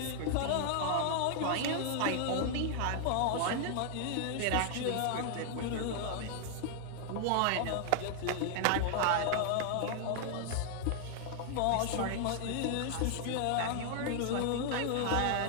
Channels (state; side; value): different; both; correlation 0.00